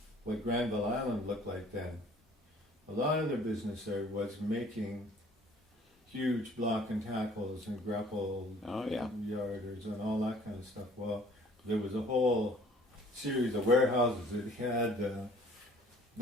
what Granville Island looked like then. A lot of their business there was making huge block and tackles and grapple yarders and all that kind of stuff. Well, there was a whole series of warehouses that had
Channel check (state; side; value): normal; both; correlation 0.54